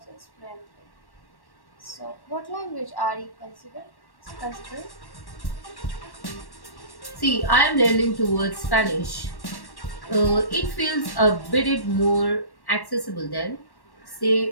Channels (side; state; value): right; late; 1.1 ms